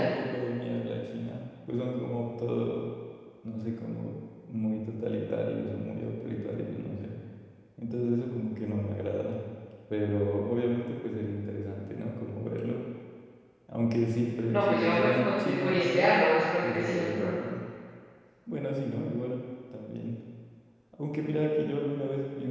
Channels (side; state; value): both; identical; correlation 1.00